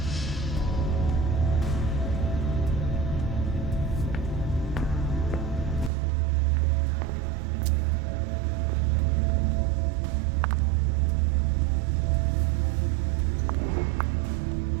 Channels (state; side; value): drops out; left; at 5.9 s